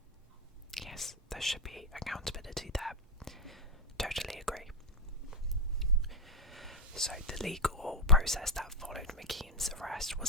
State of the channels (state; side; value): normal; both; correlation 0.10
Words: yes, there should be accountability there. Totally agree. So the legal process that followed Mikeem's arrest